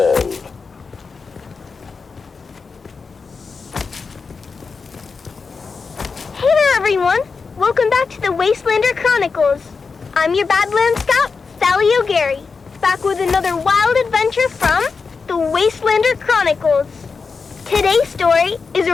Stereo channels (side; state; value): right; quieter; 4.9 dB